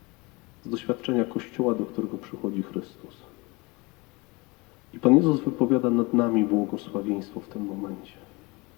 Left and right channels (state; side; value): quieter; right; 25.6 dB